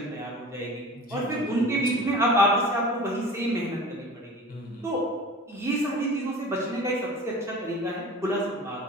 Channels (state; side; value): normal; both; correlation 0.38